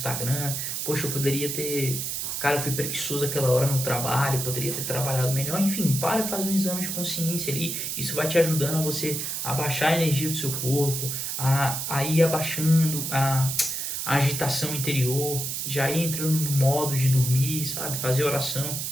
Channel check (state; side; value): noise; right; hiss, 3 dB below the sound